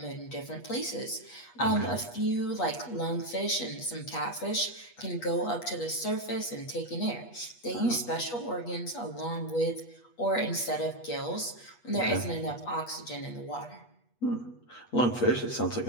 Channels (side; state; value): right; late; 8.3 ms